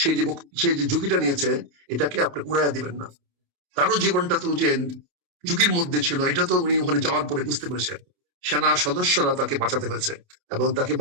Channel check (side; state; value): left; late; 29 ms